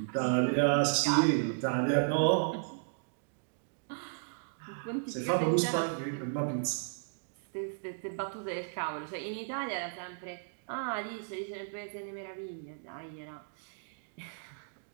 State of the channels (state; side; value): silent; left; digital silence